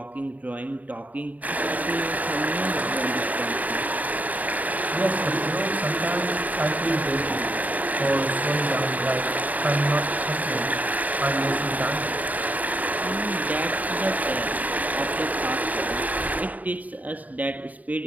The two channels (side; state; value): left; late; 0.075 ms